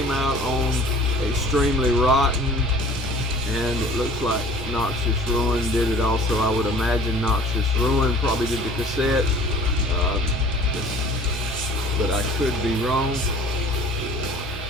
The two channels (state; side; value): normal; both; correlation 0.48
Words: out on Extremely Rotten, and it looks like Noxious Ruin did it also. I would imagine Noxious Ruin probably did the cassette, but I could be wrong.